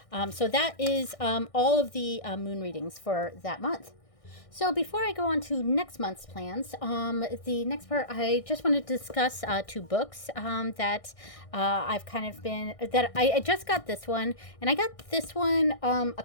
So that is all of the moon readings for that month. So before I go on to next month's plans, the next part, I just wanted to discuss two books that I've kind of been, that I just got this one, and I got this one a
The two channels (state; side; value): late; right; 1.6 ms